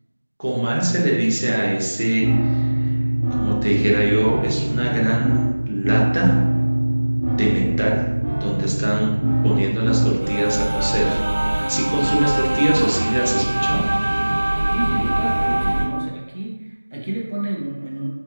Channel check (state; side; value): inverted; both; correlation -1.00